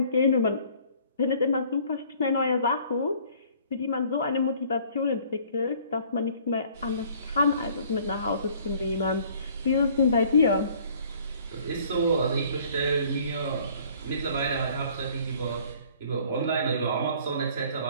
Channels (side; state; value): both; inverted; correlation -0.56